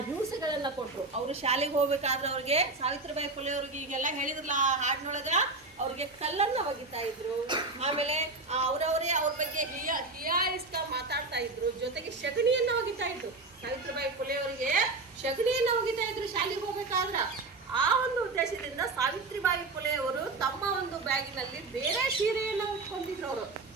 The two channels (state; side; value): quieter; left; 3.5 dB